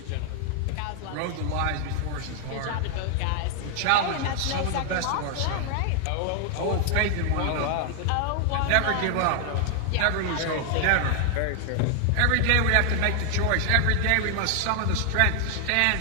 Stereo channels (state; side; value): different; both; correlation 0.00